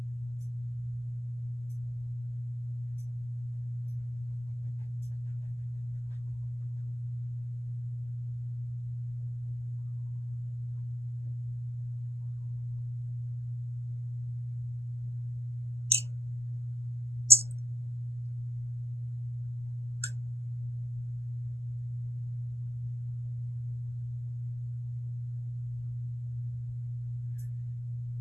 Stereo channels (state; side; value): normal; both; correlation 0.88